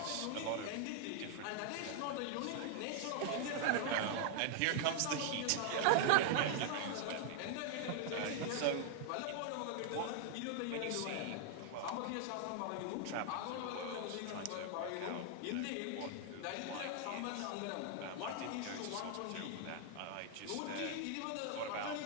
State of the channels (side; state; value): both; different; correlation 0.00